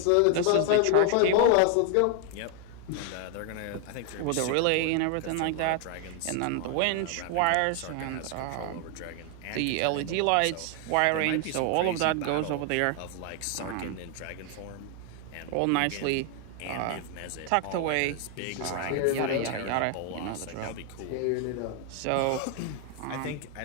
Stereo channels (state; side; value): different; both; correlation 0.00